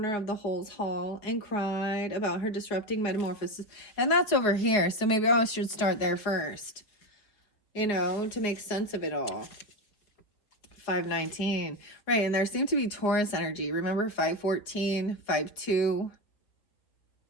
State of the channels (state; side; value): late; right; 4.4 ms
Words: of the Holes Hall and cried about her disrupting metamorphosis, and that's over here, so maybe I should start there first, you know, to make sense of it all. 519. Right, and there seemed to be Taurus energy. Remember 514, 52.